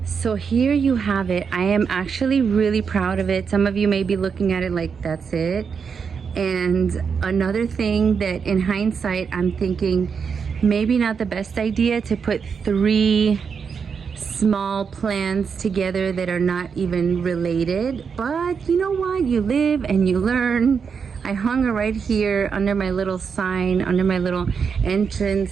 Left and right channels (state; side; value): quieter; left; 6.2 dB